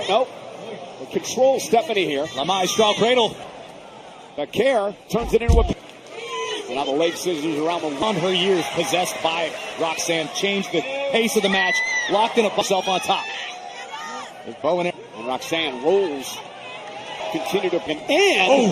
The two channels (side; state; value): both; identical; correlation 1.00